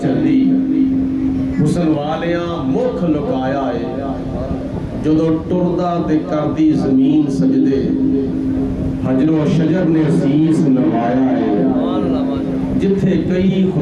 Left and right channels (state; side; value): identical; both; correlation 1.00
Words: چلی، حسن والیاں مکھ لکایا ہے، جدو ٹردہ دے کردی زمین سجدے، حجر و شجر نے سیس نوایا ہے، جتھے کئی